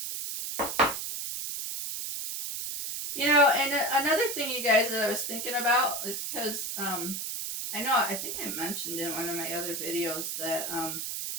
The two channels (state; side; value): noise; right; hiss, 4 dB below the sound